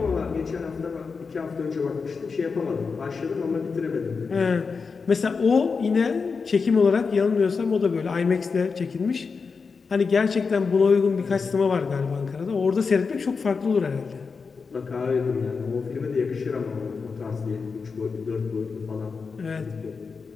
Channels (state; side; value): quieter; right; 5.0 dB